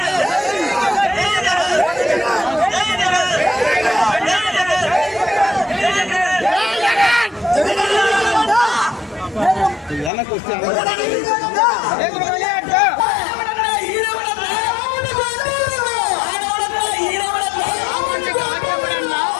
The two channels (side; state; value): right; drops out; at 10.1 s